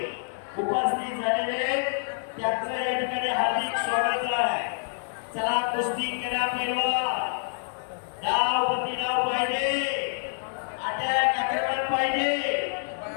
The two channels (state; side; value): silent; right; digital silence